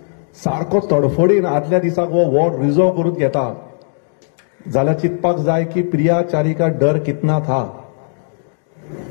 सारको तडफडीन आदल्या दिसाक हो वॉर्ड रिजर्व करून घेता जाल्यार चिंतपाक जाय की प्रिया चारी का डर कितना था,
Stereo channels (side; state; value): right; silent; digital silence